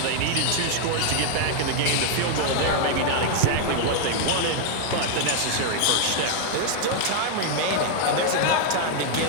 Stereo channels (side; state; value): both; different; correlation 0.00